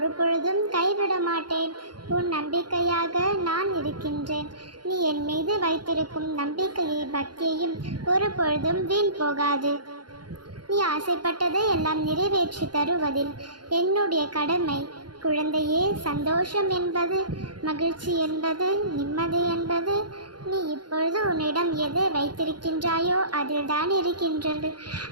பொழுதும் கைவிட மாட்டேன். உன் நம்பிக்கையாக நான் இருக்கின்றேன். நீ என் மீது வைத்திருக்கும் நம்பிக்கையை, பக்தியையும் ஒரு பொழுதும் வீண் போகாது. நீ ஆசைப்பட்டதை எல்லாம் நிறைவேற்றி தருவதில் என்னுடைய கடமை. குழந்தையே, சந்தோஷம் என்பது, மகிழ்ச்சி என்பது, நிம்மதி என்பது நீ இப்பொழுது உன்னிடம் எதை வைத்திருக்கின்றாயோ அதில் தான் இருக்கின்றது.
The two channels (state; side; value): late; left; 0.71 ms